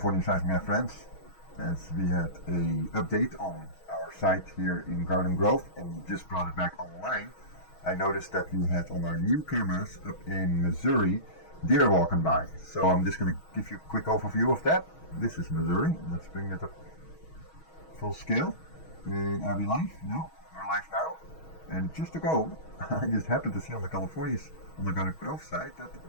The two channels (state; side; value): late; right; 6.3 ms